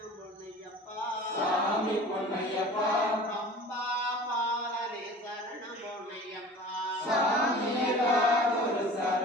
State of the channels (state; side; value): normal; both; correlation 0.42